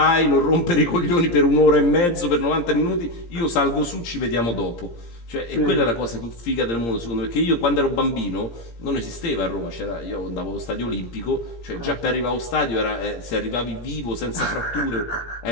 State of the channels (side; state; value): right; late; 17 ms